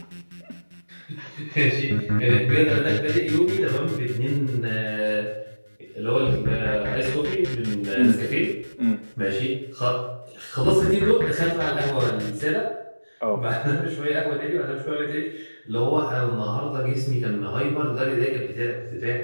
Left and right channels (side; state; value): both; inverted; correlation -1.00